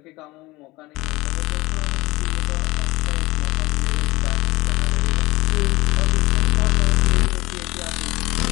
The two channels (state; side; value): quieter; right; 21.0 dB